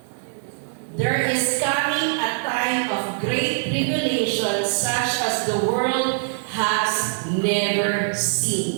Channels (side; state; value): left; silent; digital silence